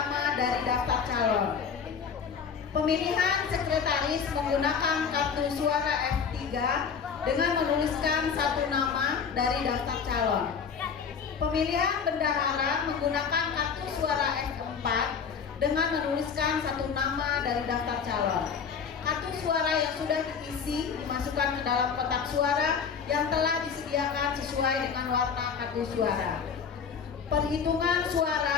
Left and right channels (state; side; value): quieter; right; 6.4 dB